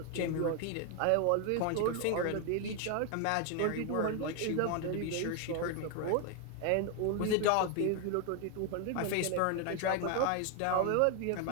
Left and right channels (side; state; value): both; different; correlation 0.01